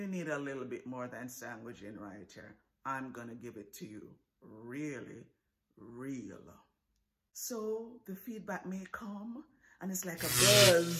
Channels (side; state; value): both; identical; correlation 1.00